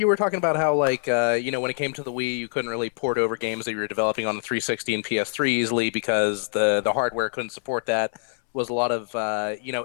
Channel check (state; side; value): silent; right; 62 dB below the other